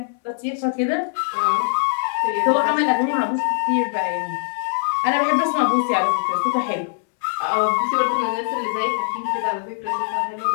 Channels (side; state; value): right; silent; 64 dB below the other